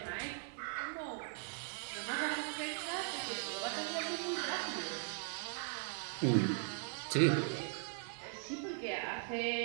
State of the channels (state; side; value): silent; left; 51 dB below the other